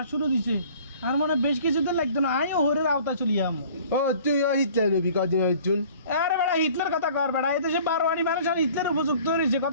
শুরু দিছে আর মনে বেশ কিছুদিন লাগতো না আইও হরের আওতা চলি আমো ও তুই ও হিটলার রবি কদিন হইছুন আরে বেড়া হিটলার কথা কর বেড়া এই দেশে বারোয়ারি মানুষ আর হিটলার উপযুক্ত হয়েছে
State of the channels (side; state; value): both; inverted; correlation -0.50